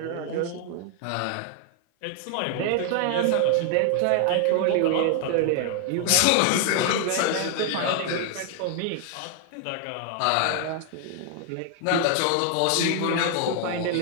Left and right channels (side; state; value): both; different; correlation 0.00